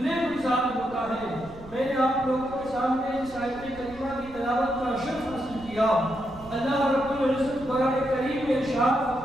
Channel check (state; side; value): noise; right; rumble, 19 dB below the sound